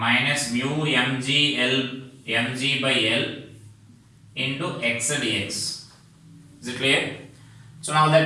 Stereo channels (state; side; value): identical; both; correlation 1.00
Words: mu mg by l into x dx. Is it clear? So now